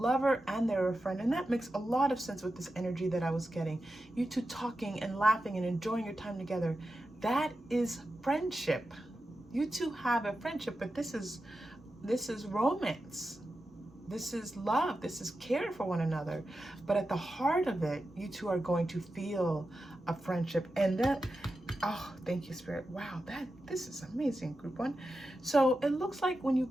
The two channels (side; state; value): both; normal; correlation 0.91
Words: and they're a friend. And that makes a lot of sense with this energy that I was getting. You two talking and laughing and enjoying your time together. That is friendship. You two have a friendship, but this is romance. This is love. This is care for one another. But at the heart of it, you two are going to feel a friendship. And that Oh, thank you, Spirit. Wow, this is amazing, Group 1. So it looks like when you